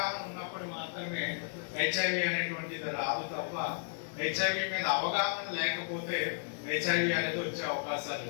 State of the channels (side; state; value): right; silent; 55 dB below the other